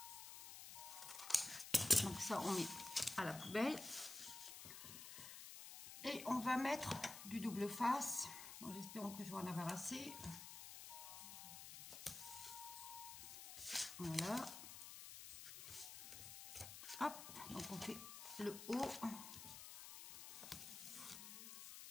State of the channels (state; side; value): noise; left; hiss, 10 dB below the sound